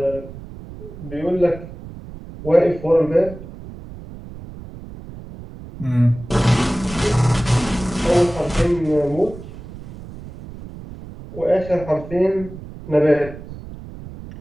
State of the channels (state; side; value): noise; right; rumble, 14 dB below the sound